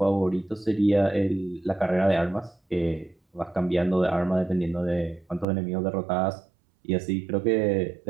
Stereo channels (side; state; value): left; drops out; at 5.5 s